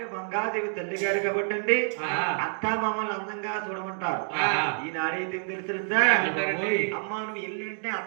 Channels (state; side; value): silent; left; 59 dB below the other